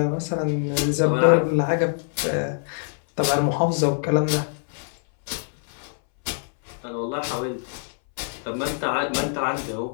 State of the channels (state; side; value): silent; right; 62 dB below the other